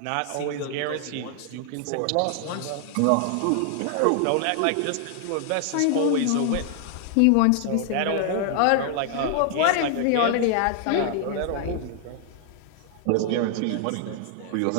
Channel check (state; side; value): different; both; correlation 0.00